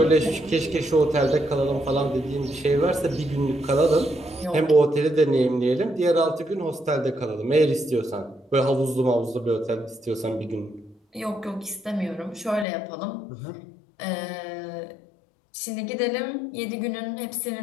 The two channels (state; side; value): drops out; right; at 12.7 s